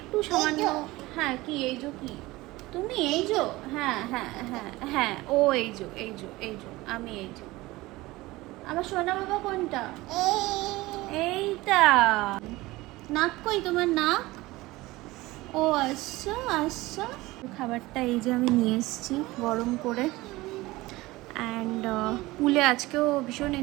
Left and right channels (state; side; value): quieter; left; 19.7 dB